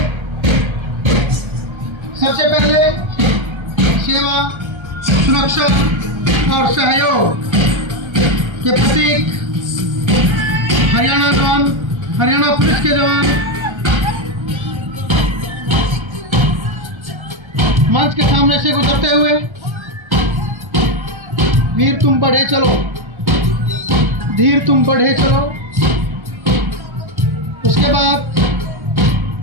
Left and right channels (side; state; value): left; late; 1.3 ms